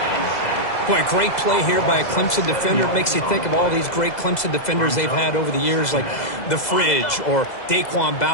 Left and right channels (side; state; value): right; late; 2.0 ms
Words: Boy, great play here by a Clemson defender. It makes you think of all these great Clemson defenders they've had over the years, like the Fridge or Daquan